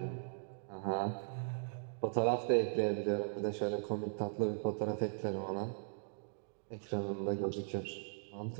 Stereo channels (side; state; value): left; silent; digital silence